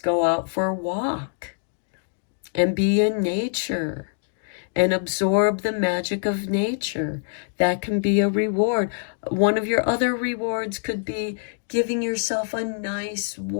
go out for a walk and be in nature and absorb the magic of nature. That can be a reward. One of your other rewards could be giving yourself a nice,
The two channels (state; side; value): silent; right; digital silence